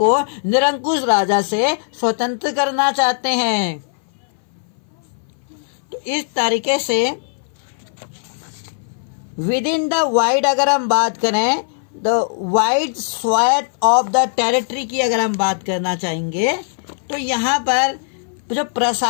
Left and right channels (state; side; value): silent; right; 59 dB below the other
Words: निरंकुश राजा से स्वतंत्र करना चाहते हैं। तो इस तरीके से विद इन द वाइड, अगर हम बात करें the wide swath of the territory की अगर हम बात करना चाहेंगे, तो यहाँ पर जो